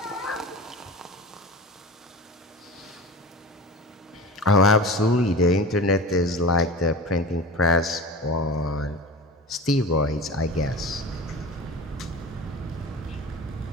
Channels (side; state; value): both; normal; correlation 0.32